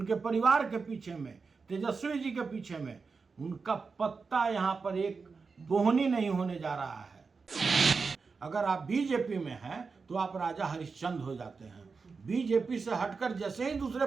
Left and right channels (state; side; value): quieter; left; 4.8 dB